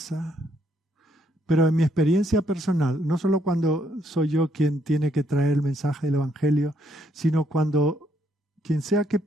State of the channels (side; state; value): both; normal; correlation 0.72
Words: Pero en mi experiencia personal, no solo cuando soy yo quien tiene que traer el mensaje del Evangelio, sino cuando quien sea que